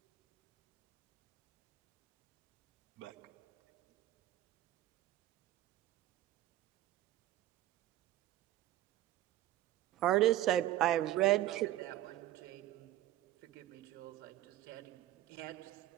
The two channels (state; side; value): quieter; left; 14.5 dB